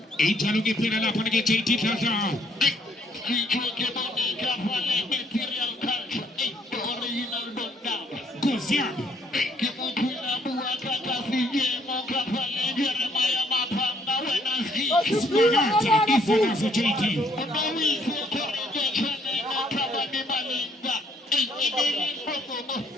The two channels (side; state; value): both; normal; correlation 0.66